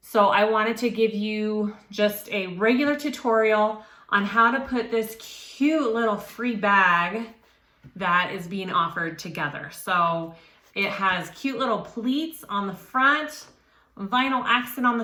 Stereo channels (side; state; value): both; identical; correlation 1.00